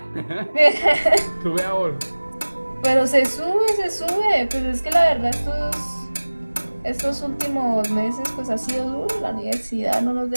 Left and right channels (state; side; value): inverted; both; correlation -1.00